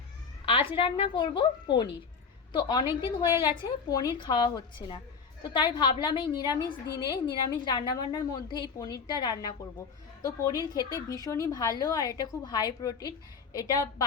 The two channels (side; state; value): right; quieter; 5.7 dB